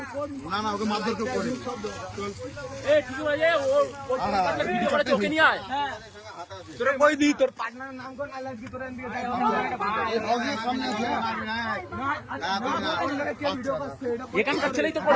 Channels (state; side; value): identical; both; correlation 1.00